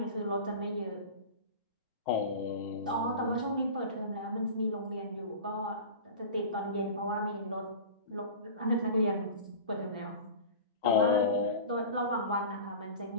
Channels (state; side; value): inverted; both; correlation -0.34